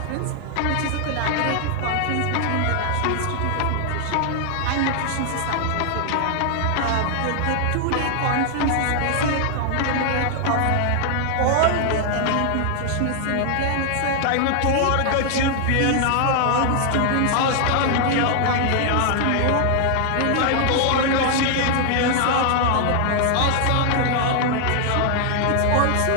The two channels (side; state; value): both; different; correlation 0.00